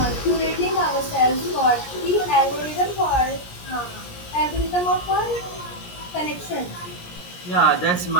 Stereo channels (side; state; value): right; late; 17 ms